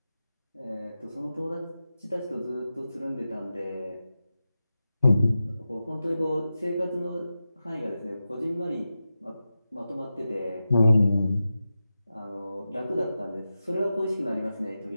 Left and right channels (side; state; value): both; inverted; correlation -0.92